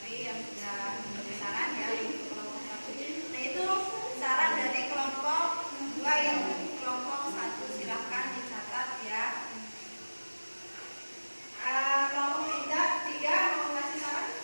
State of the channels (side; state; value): both; inverted; correlation -1.00